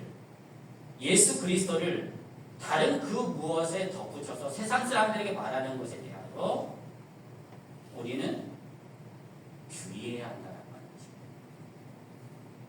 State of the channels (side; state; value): both; identical; correlation 1.00